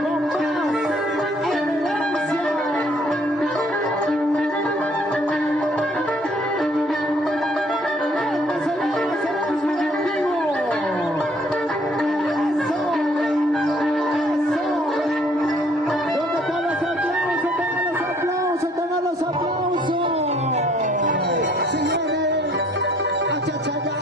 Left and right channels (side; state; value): both; normal; correlation 0.62